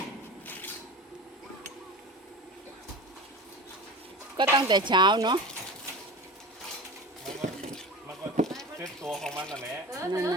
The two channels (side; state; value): both; normal; correlation 0.32